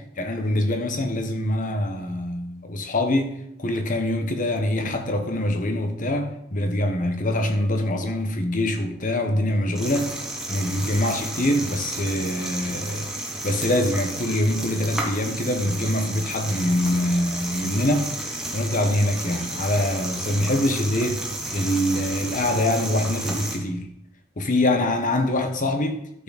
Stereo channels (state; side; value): normal; both; correlation 0.60